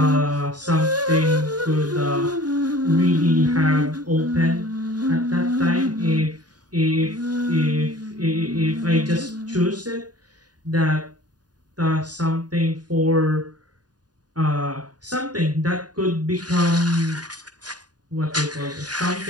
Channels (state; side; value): late; left; 0.69 ms